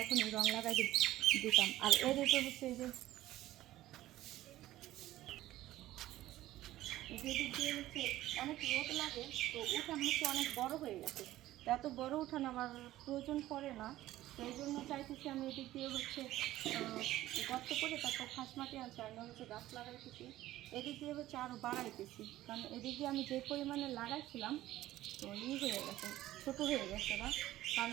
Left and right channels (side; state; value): left; quieter; 15.1 dB